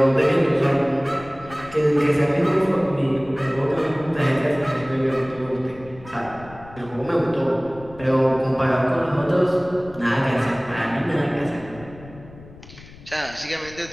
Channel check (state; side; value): noise; left; rumble, 19 dB below the sound